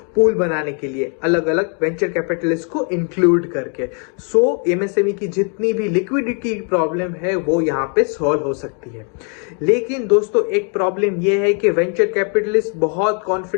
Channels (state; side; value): quieter; right; 40.0 dB